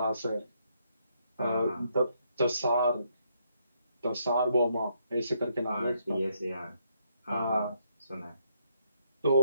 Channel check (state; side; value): inverted; both; correlation -0.74